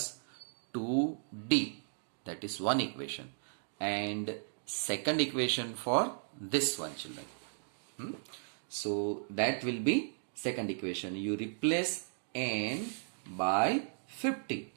2D. That is one equation. And second equation for this one children. So that will be second equation. You replace n by 50.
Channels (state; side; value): silent; left; digital silence